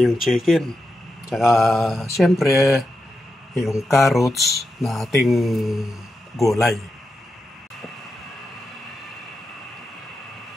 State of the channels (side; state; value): both; normal; correlation 0.88